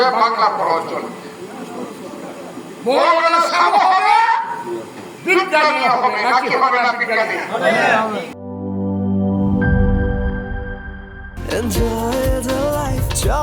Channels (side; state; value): both; identical; correlation 1.00